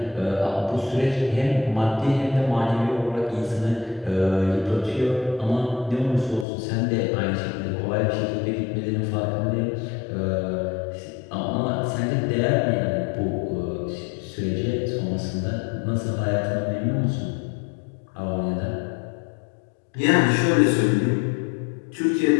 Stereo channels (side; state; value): right; drops out; at 6.5 s